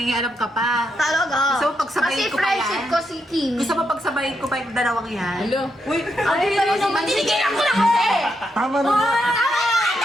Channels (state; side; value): normal; both; correlation 0.81